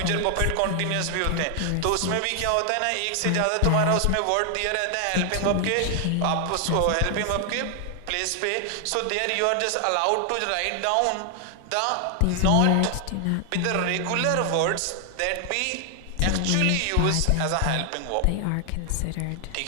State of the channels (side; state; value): both; different; correlation 0.00